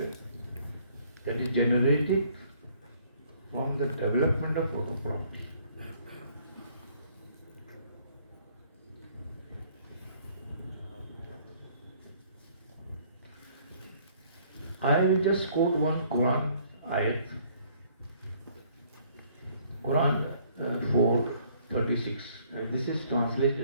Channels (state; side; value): inverted; both; correlation -0.61